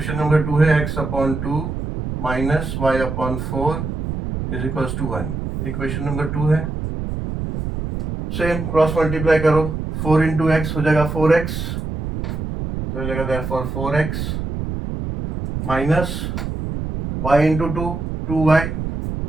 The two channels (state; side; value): noise; right; rumble, 4 dB below the sound